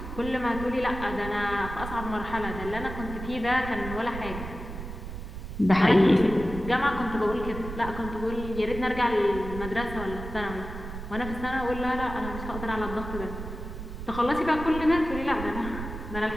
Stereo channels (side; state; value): right; noise; rumble, 9 dB below the sound